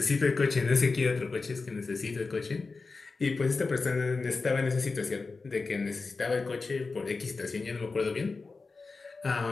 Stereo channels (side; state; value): right; quieter; 4.1 dB